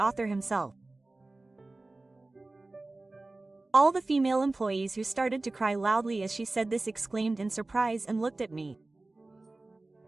himself. All the female employees who started to cry loudly as she said this exclaimed in surprise and looked at me.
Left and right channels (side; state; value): left; quieter; 3.1 dB